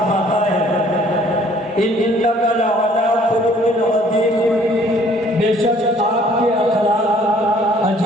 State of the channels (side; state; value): both; normal; correlation 0.58